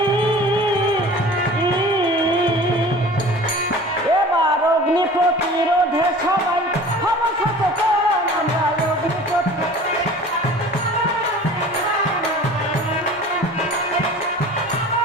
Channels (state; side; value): normal; both; correlation 0.42